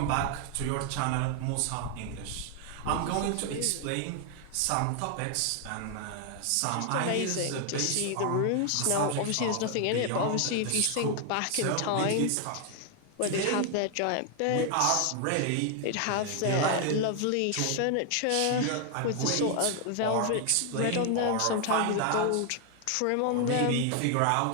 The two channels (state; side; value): different; both; correlation 0.00